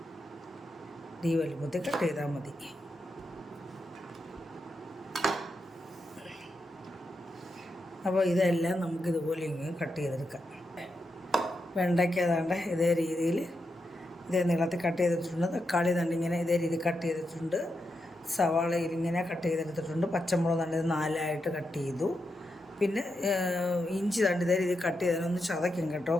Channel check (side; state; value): both; normal; correlation 0.85